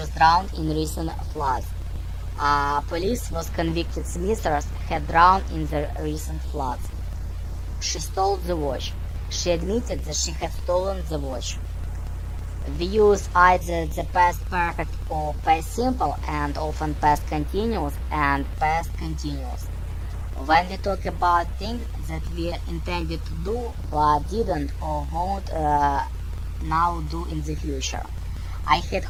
drowned in recent floods. Police was convicted Smithers had drowned in the recent floods. She stole the watch. She admitted that she had stolen the watch. We use either the past perfect or past simple and often past continuous and past continuous. When we talk about things that we intended to do but didn't or won't now do in the future. I had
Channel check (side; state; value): both; identical; correlation 1.00